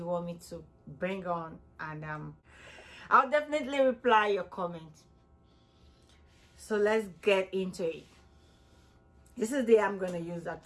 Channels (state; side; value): identical; both; correlation 1.00